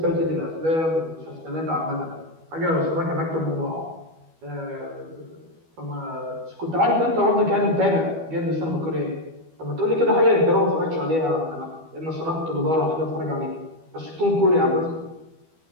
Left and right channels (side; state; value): left; late; 12 ms